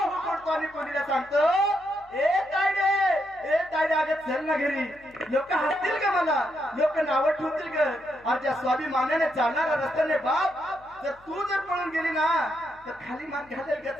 पडतो आणि मुलीला सांगतो, ए तायडे अगं चल ना घरी. लोक हसतील का मला, लोक नावं ठेवतील का? आज ज्या स्वाभिमानाने चालणारा रस्त्याने बाप जर तू जर पळून गेली ना तर खाली मान घालेल का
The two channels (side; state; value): left; noise; hum, 28 dB below the sound